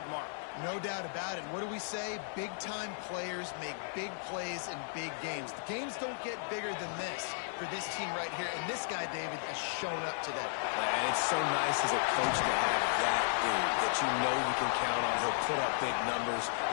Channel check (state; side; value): silent; right; digital silence